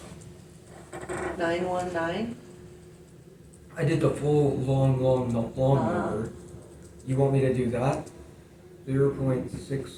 I did the full long number. You want me to do that?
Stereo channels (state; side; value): identical; both; correlation 1.00